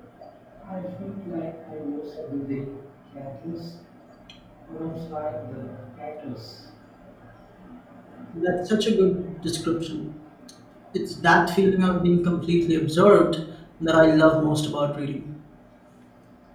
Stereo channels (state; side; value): identical; both; correlation 1.00